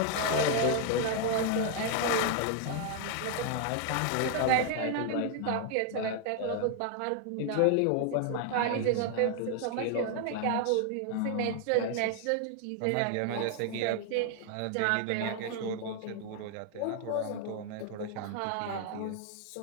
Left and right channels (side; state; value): both; different; correlation 0.00